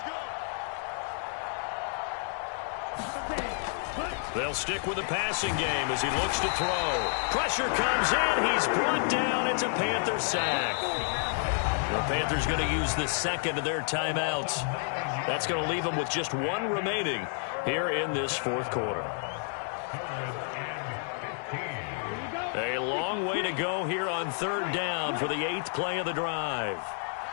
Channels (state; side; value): silent; right; 56 dB below the other